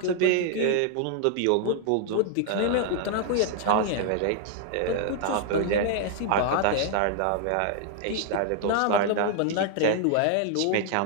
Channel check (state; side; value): different; both; correlation 0.00